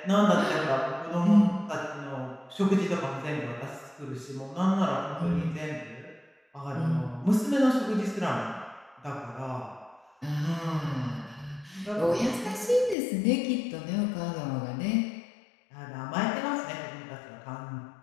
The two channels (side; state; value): right; drops out; at 13.0 s